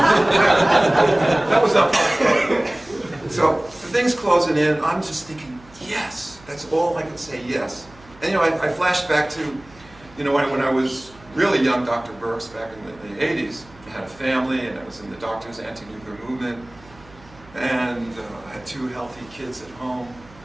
That was not fun. So the thing's closing in. I'm just thinking, yes. That's all I could say, yes. And I flashed back to, when I was really young, Dr. Burkes, back in the 80s. I had a family, and I was in the doctor's anti-nuclear movement, and I had 2 healthy kids at home,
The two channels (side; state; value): right; noise; hum, 24 dB below the sound